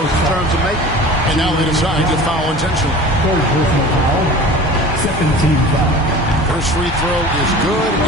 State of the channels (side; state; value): both; normal; correlation 0.39